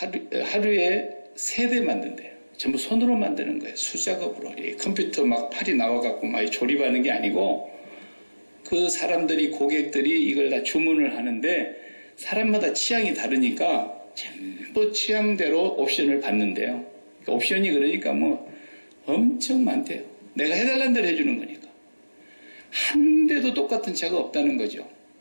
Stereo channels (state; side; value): inverted; both; correlation -1.00